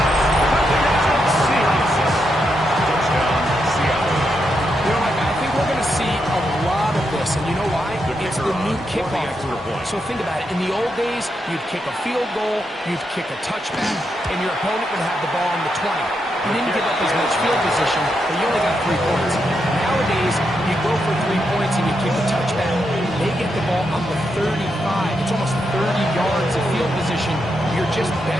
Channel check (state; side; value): normal; both; correlation 0.83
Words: So think about it. In the old days, you'd kick a field goal, you'd kick a touchback, and your opponent would have the ball on the 20. You didn't give up as much field position, but you only got 3 points. Nowadays, you go for 3 points and you kick a touchback. They get the ball on the 35. It's almost 30 yards of field position. You're just